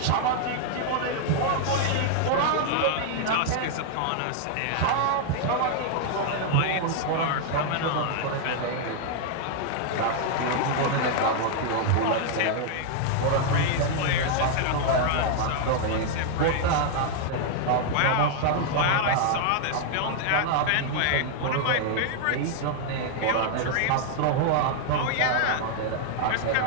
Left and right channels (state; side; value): different; both; correlation 0.00